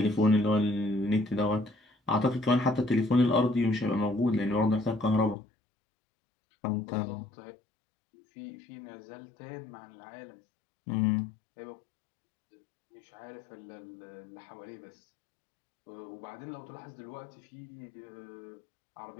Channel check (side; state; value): right; drops out; at 5.4 s